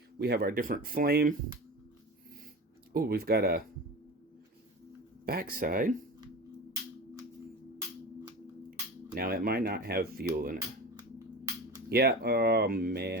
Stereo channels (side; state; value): both; normal; correlation 0.31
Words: We have our different flame. Oh, we've got a backside. Now, it might not have fuel in it. Yeah, oh